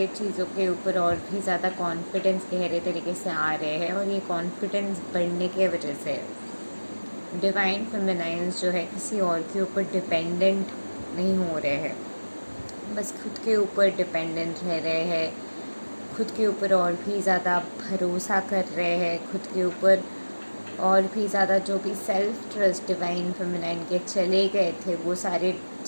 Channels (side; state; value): both; inverted; correlation -1.00